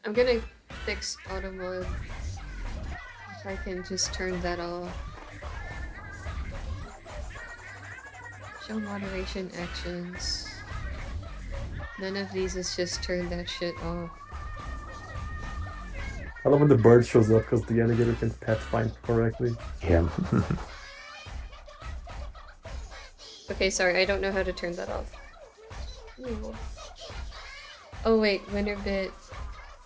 gonna fix auto mode. If I can just turn that off. Show moderation actions. None of these is just turn that shit off. I love when the bird shows up because the alligator can pet find correctly. Yeah. Okay, sorry, I don't know how to turn that off. Ew. Oh wait, winner bit.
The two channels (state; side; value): identical; both; correlation 1.00